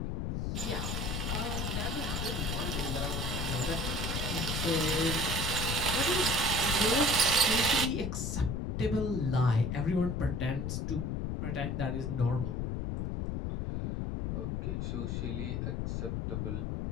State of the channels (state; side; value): noise; left; rumble, 1 dB below the sound